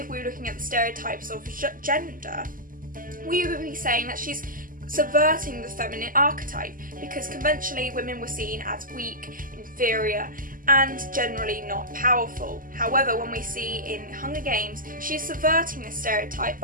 we're looking at the stereotypes of gender, we would be saying that she's subverting the feminine archetype, because conventionally women were seen as weak, inferior, and generally not powerful. However, when we see in Hunger Games, she's subverting this stereotype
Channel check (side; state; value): left; late; 0.41 ms